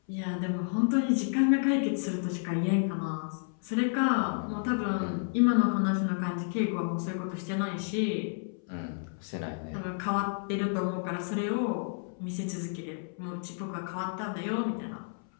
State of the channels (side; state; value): right; silent; 57 dB below the other